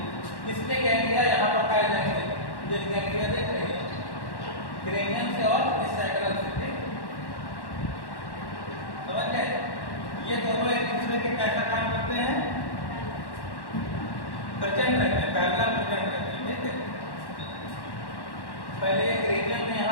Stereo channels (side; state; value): right; late; 1.1 ms